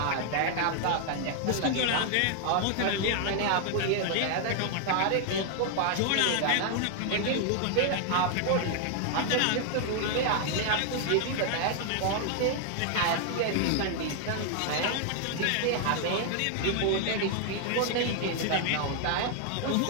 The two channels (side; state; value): both; different; correlation 0.00